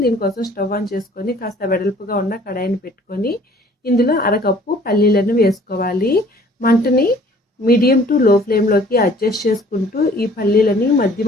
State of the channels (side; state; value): both; normal; correlation 0.54